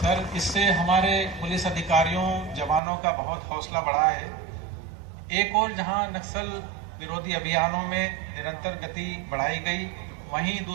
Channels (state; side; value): drops out; left; at 2.8 s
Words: इससे हमारे पुलिस अधिकारियों, जवानों का बहुत हौसला बढ़ा है। एक और जहां नक्सल विरोधी अभियानों में निरंतर गति बढ़ाई गई, वहीं